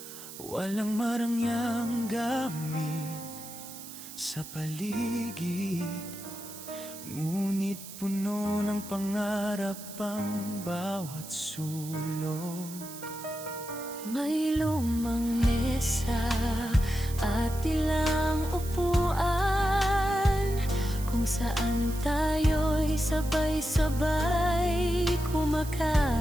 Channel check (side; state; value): right; noise; hiss, 13 dB below the sound